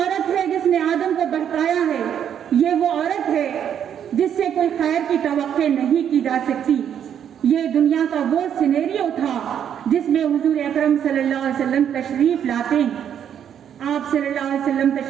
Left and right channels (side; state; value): left; quieter; 9.1 dB